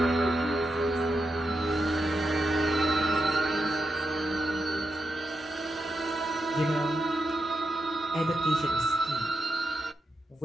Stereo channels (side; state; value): both; normal; correlation 0.86